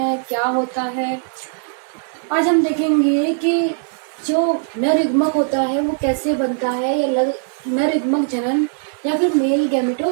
क्या होता है। आज हम देखेंगे कि जो नर युग्मक होता है वो कैसे बनता है, या नर युग्मक जनन या फिर मेल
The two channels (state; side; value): silent; left; digital silence